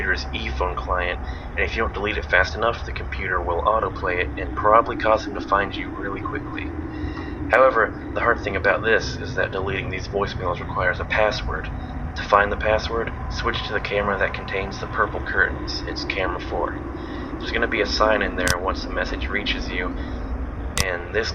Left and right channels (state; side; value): identical; both; correlation 1.00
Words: e-phone client, and if you don't delete it fast enough, the computer will autoplay it and probably cause him to find you really quickly. However, the hard thing about this is that deleting these voicemails requires a password. To find the password, switch to the camera that contains the purple curtains. It's camera 4. There's going to be a sign in there once the message reaches you, and this